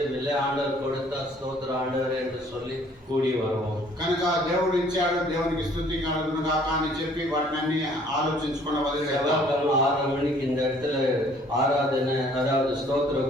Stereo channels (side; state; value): both; normal; correlation 0.58